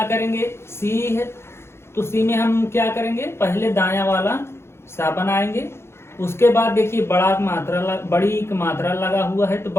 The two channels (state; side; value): late; right; 0.12 ms